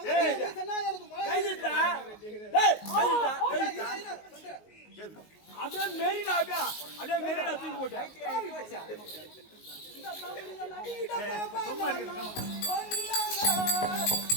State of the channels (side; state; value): right; late; 19 ms